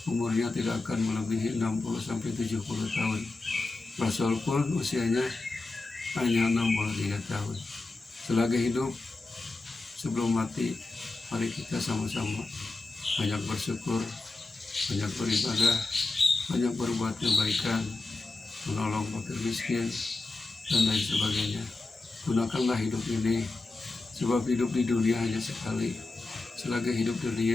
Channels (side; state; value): right; quieter; 3.3 dB